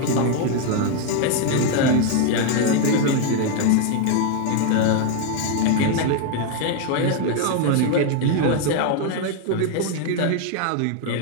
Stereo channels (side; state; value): both; different; correlation 0.01